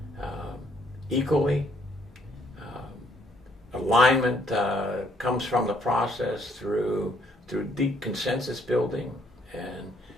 equally. Alignment comes from the process through deep consensus building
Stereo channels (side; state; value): both; normal; correlation 0.67